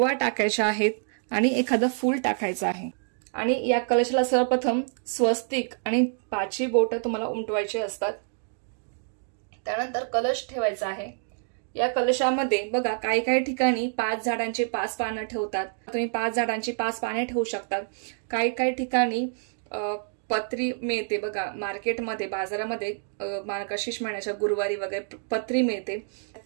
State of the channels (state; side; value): silent; left; digital silence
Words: टाकायच्या आहेत आणि एखादं फूल टाकायचं आहे. आणि या कलशाला सर्वप्रथम स्वस्तिक आणि 5 बोटं तुम्हाला उमटवायचे असतात. त्यानंतर कलश ठेवायचा आहे. या कलशामध्ये बघा काही ठिकाणी 5 झाडांची 5 पानं ठेवतात. तुम्ही 5 झाडांची 5 पाने ठेवू शकतात. काही ठिकाणी पत्री मिळते बघा मार्केटमध्ये, बाजारामध्ये मार्गशीर्ष महिन्याच्या गुरुवारी वगैरे पत्री मिळते.